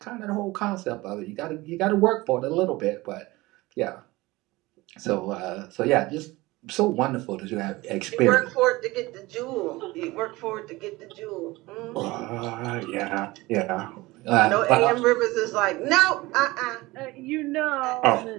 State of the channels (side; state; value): left; quieter; 20.7 dB